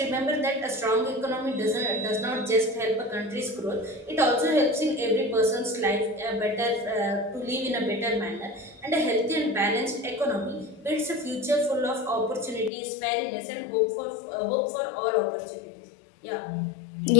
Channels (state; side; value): drops out; right; at 12.7 s